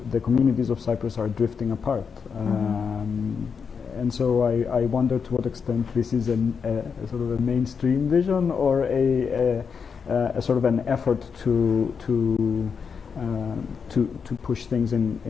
the communities of Cyprus are drifting apart. And so I wonder to what extent this is a sort of a mainstream vision or a sort of an effort to push things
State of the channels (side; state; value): right; quieter; 6.1 dB